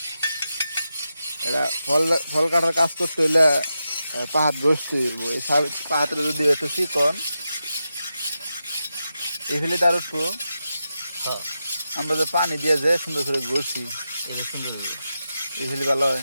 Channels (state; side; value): inverted; both; correlation -0.89